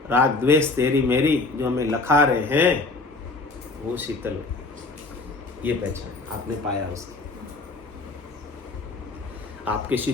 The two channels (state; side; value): quieter; right; 3.5 dB